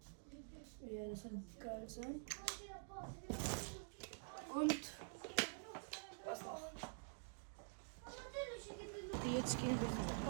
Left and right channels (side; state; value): left; silent; digital silence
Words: ja, das wird geil sein. Und was noch? Okay, jetzt gehen wir ins